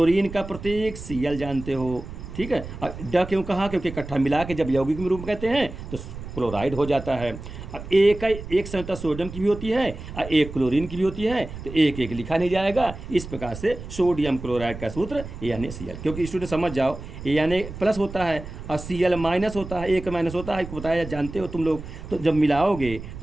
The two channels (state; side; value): noise; right; rumble, 11 dB below the sound